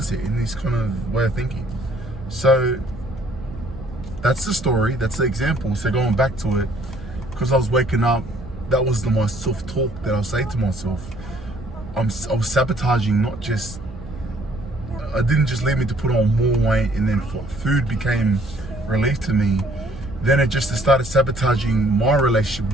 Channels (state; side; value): noise; right; hum, 15 dB below the sound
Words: in this kind of way of thinking. So that's the story. That's the example. So going back to it, because I was waking up, that was my self-talk that I was saying to myself. I was sabotaging, not just. It didn't just lead me to put on more weight, and then food became relief to me. Then it just started sabotaging my relationship